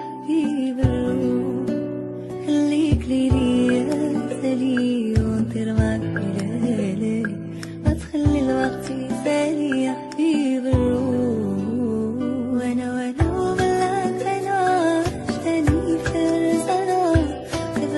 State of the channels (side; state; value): both; identical; correlation 1.00